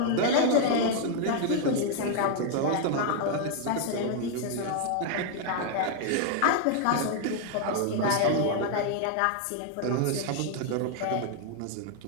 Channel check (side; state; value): both; different; correlation 0.00